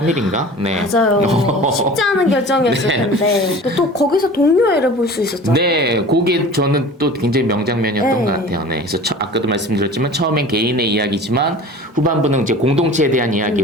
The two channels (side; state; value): both; normal; correlation 0.40